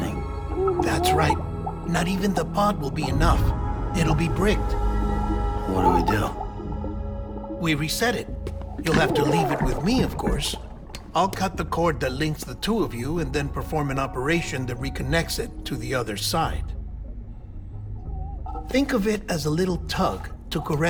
That's right. Not even the pod will be enough. It'll be bricked. What do we do? We reset it. You'll have to leave it with me, of course. I'll cut the cord that links the two of you and then perform an operation that reconnects it to the other side. Think of it as a little tug to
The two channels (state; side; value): identical; both; correlation 1.00